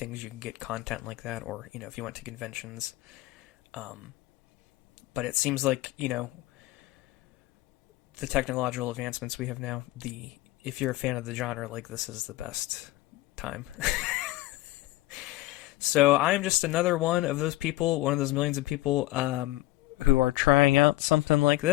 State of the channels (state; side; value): quieter; right; 17.7 dB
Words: you could get content like that, or, if you went to conventions. But it seems like, the technological advancements we have now, if you're a fan of the genre, like this is the best time. So I'm just another one of those people, one of those millions of people who are trying out something like